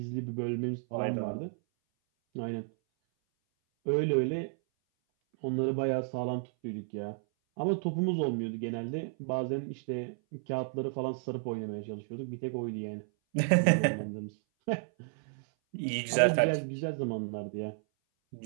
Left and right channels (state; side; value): silent; left; 56 dB below the other